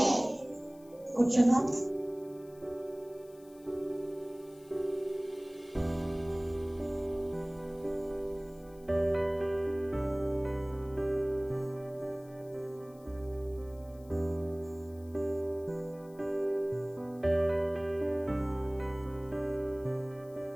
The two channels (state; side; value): noise; left; hiss, 27 dB below the sound